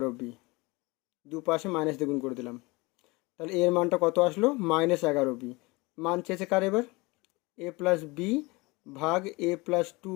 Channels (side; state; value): right; quieter; 24.6 dB